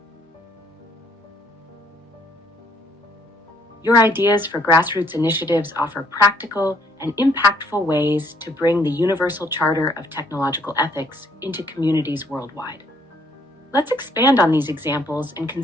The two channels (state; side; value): normal; both; correlation 0.66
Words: Your ideas for grassroots initiatives offer practical and impactful ways to bring the Universal Charter of Technological Ethics into communities worldwide. Let's expand on these examples and